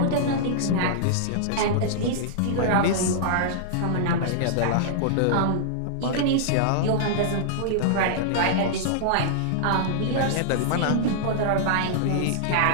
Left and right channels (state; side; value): different; both; correlation -0.02